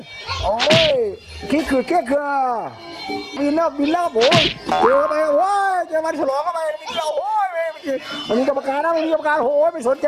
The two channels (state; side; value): identical; both; correlation 1.00